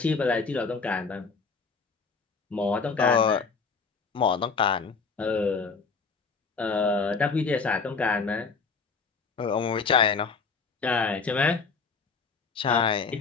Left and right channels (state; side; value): quieter; right; 5.0 dB